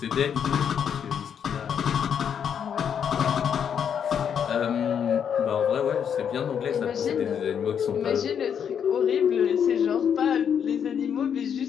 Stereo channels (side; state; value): right; quieter; 8.0 dB